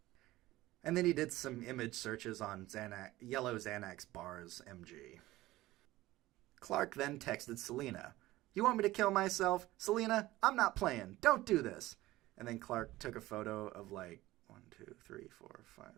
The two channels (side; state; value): left; quieter; 17.2 dB